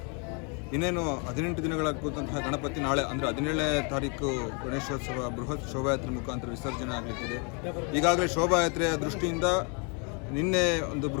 ಇನ್ನೇನು 18 ದಿನಗಳಾಗುವಂತಹ ಗಣಪತಿ ನಾಳೆ ಅಂದರೆ 17ನೇ ತಾರೀಕು ಗಣೇಶೋತ್ಸವ ಬೃಹತ್ ಶೋಭಾಯಾತ್ರೆ ಮುಖಾಂತರ ವಿಸರ್ಜನೆ ಆಗಲಿಕ್ಕಿದೆ. ಈಗಾಗಲೇ ಶೋಭಾಯಾತ್ರೆಯ ದೃಷ್ಟಿಯಿಂದ ನಿನ್ನೆ ಒಂದು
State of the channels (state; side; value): quieter; right; 35.4 dB